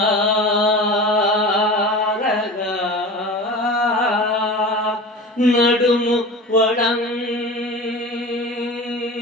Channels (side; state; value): both; normal; correlation 0.33